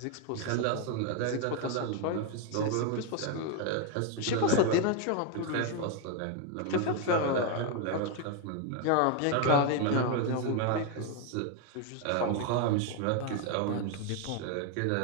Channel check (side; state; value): both; different; correlation 0.01